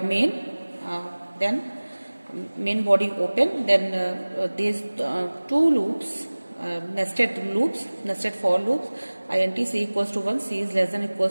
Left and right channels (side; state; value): both; inverted; correlation -1.00